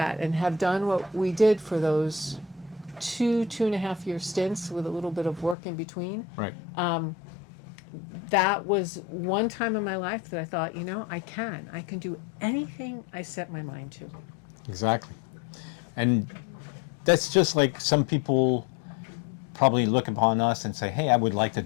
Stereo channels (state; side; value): drops out; right; at 5.6 s